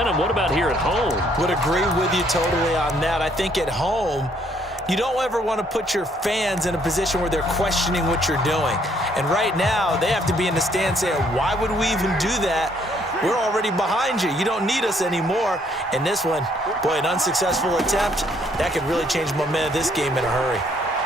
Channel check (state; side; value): normal; both; correlation 0.67